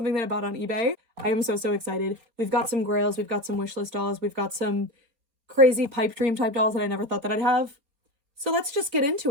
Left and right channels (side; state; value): left; late; 4.3 ms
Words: that I bought on eBay. I am so excited. We've got some grails, we've got some wishlist dolls, we've got some crazy pipe dream type dolls that I never thought that I'd have. So let's just get